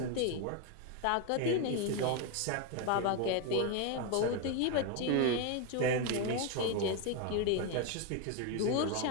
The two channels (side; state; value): both; different; correlation 0.02